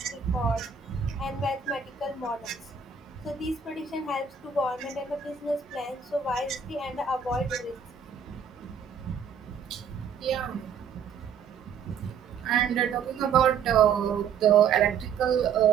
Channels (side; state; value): left; quieter; 6.7 dB